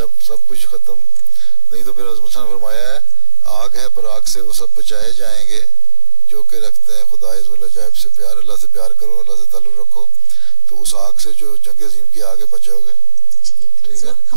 कुछ खत्म नहीं तो फिर मुसलमान फरमाया है आग है पर आग से वो सब बचाए जाएंगे जो कि रखते हैं खुदा अज़्ज़वजल से प्यार। अल्लाह से प्यार करो, अल्लाह से ताल्लुक़ रखो, तो उस आग से जो जंग अज़ीम की आगे बचोगे। ठीक है।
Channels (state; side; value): noise; left; hum, 20 dB below the sound